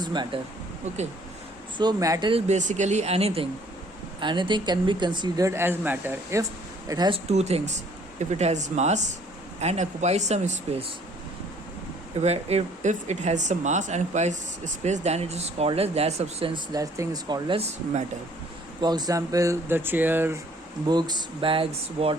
matter? Okay. So matter is basically anything. Anything can be considered as matter if it has two things. If it has mass and occupies some space. If it has some mass and occupies space, then it is called as that substance, that thing is called as matter. For example, the chair, books, bags,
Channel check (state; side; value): normal; both; correlation 0.59